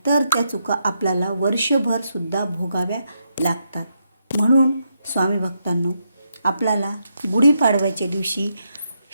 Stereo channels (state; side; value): inverted; both; correlation -0.81